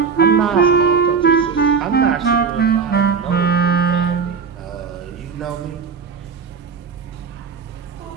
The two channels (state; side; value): quieter; left; 5.9 dB